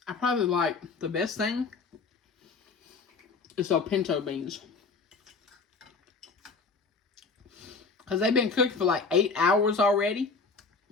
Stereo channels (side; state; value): right; quieter; 4.5 dB